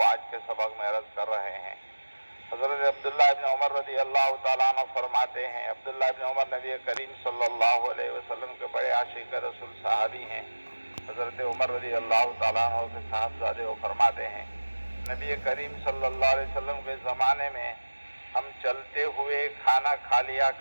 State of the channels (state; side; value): inverted; both; correlation -1.00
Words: آج کے سبق میں عرض کر رہے ہیں۔ حضرت عبداللہ ابن عمر رضی اللہ تعالیٰ عنہ فرماتے ہیں، عبداللہ ابن عمر نبی کریم صلی اللہ علیہ وسلم کے بڑے عاشق رسول صحابی ہیں۔ حضرت عمر رضی اللہ تعالیٰ عنہ کے صاحبزادے وہ فرماتے ہیں، نبی کریم صلی اللہ علیہ وسلم کے زمانے میں ہم چلتے ہوئے کھانا کھا لیا